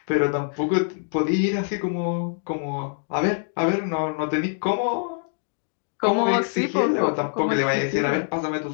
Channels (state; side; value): silent; right; digital silence